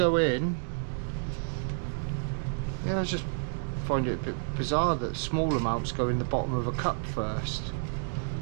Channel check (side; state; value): left; silent; digital silence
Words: in. Yeah, I just find it a bit bizarre that small amounts go in the bottom of a cup first.